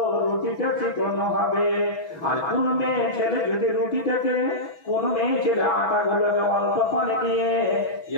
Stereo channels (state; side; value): late; right; 6.2 ms